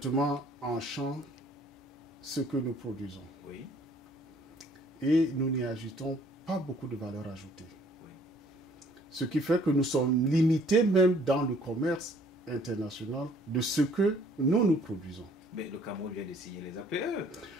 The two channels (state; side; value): normal; both; correlation 0.59